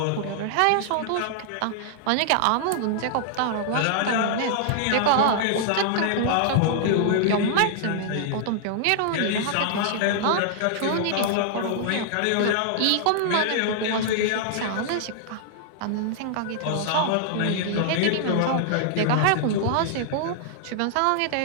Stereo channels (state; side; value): different; both; correlation -0.01